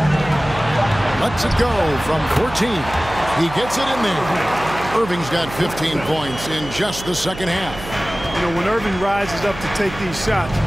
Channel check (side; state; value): right; noise; hum, 12 dB below the sound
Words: Lets it go from 14. He gets it in there. Irving's got 15 points in just the second half. You know, when Irving rises up to take these shots,